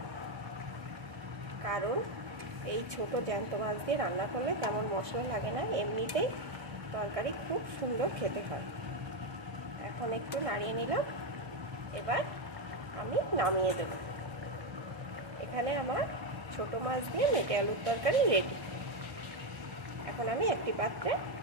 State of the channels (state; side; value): late; left; 1.6 ms